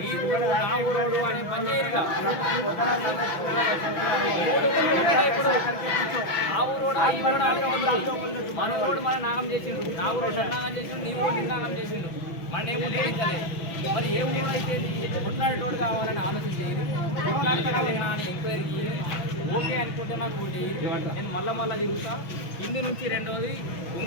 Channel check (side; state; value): right; late; 6.1 ms